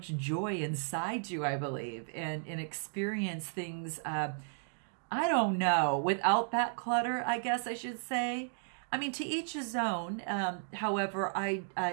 joy inside you, I believe, and experience things, I don't know, without that clutter, I guess I should say. I mean, to each his own. However,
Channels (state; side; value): silent; left; digital silence